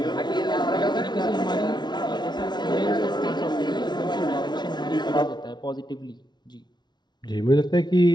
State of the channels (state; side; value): late; right; 0.20 ms